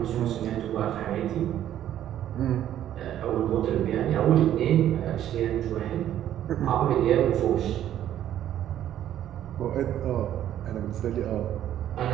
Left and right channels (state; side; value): quieter; left; 11.4 dB